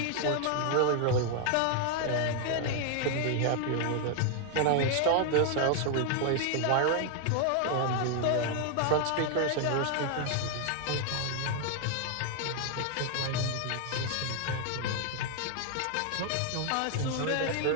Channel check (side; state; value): both; different; correlation 0.00